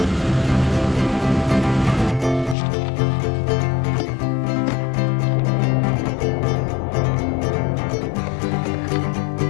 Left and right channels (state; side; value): drops out; right; at 2.6 s